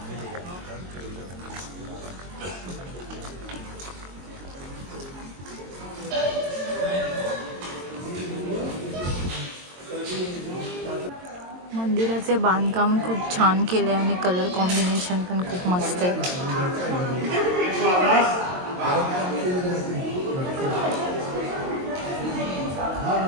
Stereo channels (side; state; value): left; late; 22 ms